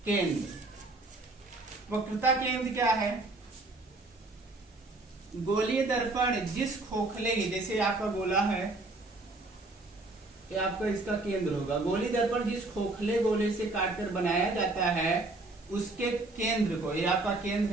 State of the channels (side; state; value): left; quieter; 3.0 dB